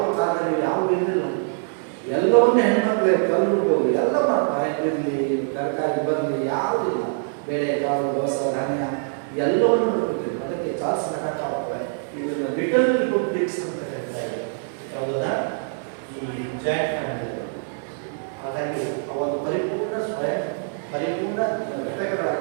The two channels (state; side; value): silent; left; digital silence